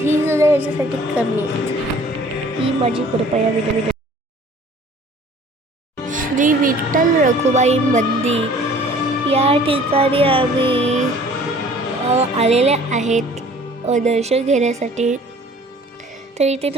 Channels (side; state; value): both; normal; correlation 0.51